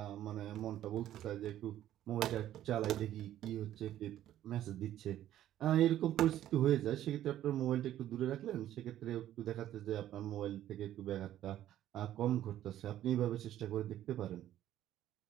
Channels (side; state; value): left; quieter; 12.4 dB